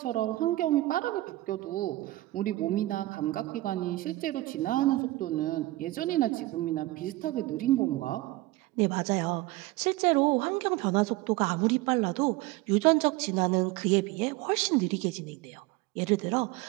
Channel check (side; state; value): left; quieter; 18.4 dB